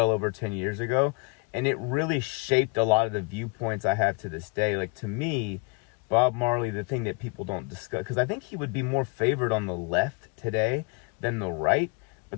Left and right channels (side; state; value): right; quieter; 33.9 dB